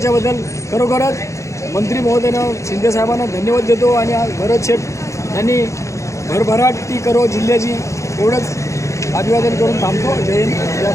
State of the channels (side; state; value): right; late; 0.15 ms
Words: खरोखरच मंत्री महोदयानं शिंदेसाहेबांना धन्यवाद देतो आणि आज भरतशेठ यांनी भरभराटी करो जिल्ह्याची एवढंच अभिवादन करून थांबतो। जय हिंद, जय